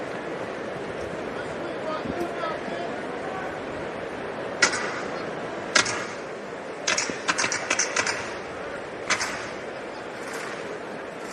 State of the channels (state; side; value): identical; both; correlation 1.00